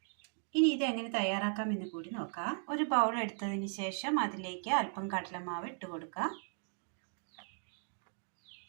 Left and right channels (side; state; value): left; silent; 53 dB below the other